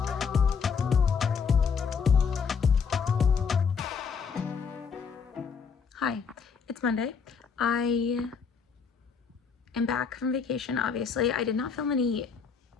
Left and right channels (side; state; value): right; quieter; 5.9 dB